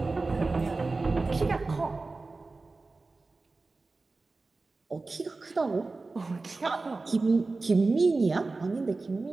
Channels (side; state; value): left; quieter; 3.6 dB